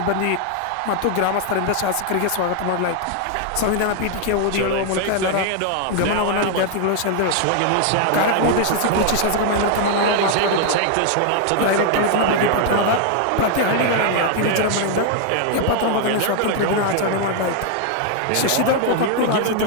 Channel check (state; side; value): different; both; correlation 0.00